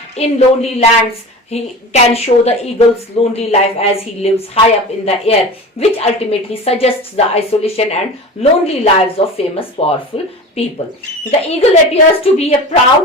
In lonely lands he can show the eagle's lonely life as he lives high up in the air, which ultimately suggests the isolation and lonely lives of famous powerful people. The eagle appears to be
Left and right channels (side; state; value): both; normal; correlation 0.33